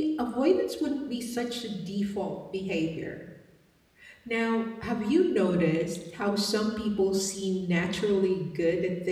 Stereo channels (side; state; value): both; identical; correlation 1.00